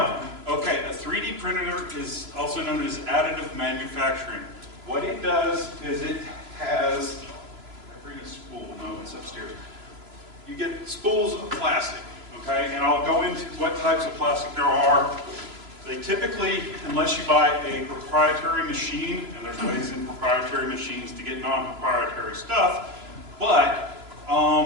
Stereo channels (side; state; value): left; late; 3.0 ms